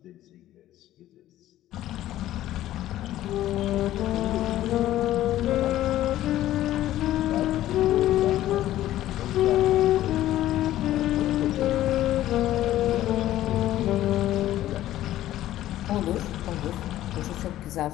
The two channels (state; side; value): quieter; right; 13.9 dB